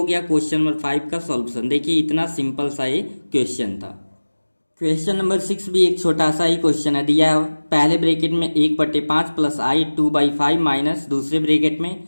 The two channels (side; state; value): both; inverted; correlation -1.00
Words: गया क्वेश्चन नंबर 5 का सॉल्यूशन। देखिए इतना सिंपल सा ये क्वेश्चन था। क्वेश्चन नंबर 6 भी एक छोटा सा ही क्वेश्चन है। दिया है पहले ब्रैकेट में 1/5 प्लस आई 2/5 माइनस दूसरे ब्रैकेट में